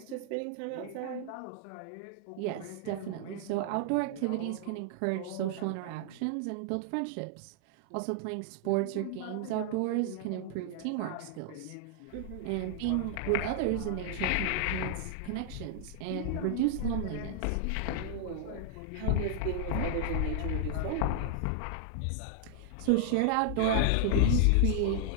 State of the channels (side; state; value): both; different; correlation -0.01